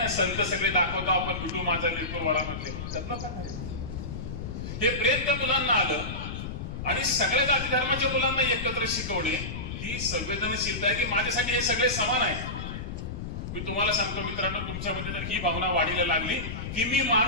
संत सगळे दाखवतो आपण, विठू माझा लेकरू वळामधले, त्यातला काय आहे. हे प्रेम त्या मुलांना आलं आणि सगळ्या जाती धर्माच्या मुलांना एकत्र शिकवणे ही संवेदनशीलता आहे की माझ्यासाठी हे सगळे समान आहेत. मी तुम्हाला सांगतो मित्रांनो, तुमच्यामध्ये जर ही भावना वाढीला लागली की मी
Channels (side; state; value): left; noise; rumble, 6 dB below the sound